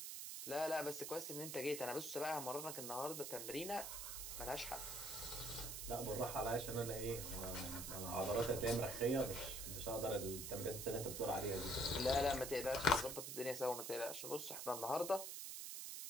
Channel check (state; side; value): noise; right; hiss, 5 dB below the sound